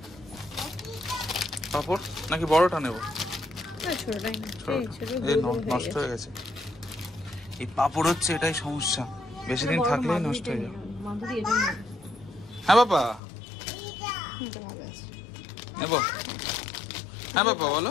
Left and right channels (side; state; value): right; drops out; at 13.2 s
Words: পাপড় নাকি বড়টা নেবো? ছোটটাই না, নষ্ট হয়ে গেছে। এই পাপড় হচ্ছে এটাই সমস্যা, বেশি দিন থাকলেই নষ্ট হয়ে যাবে। হ্যাঁ বাবা, নেবো? হ্যাঁ বাবা বলো।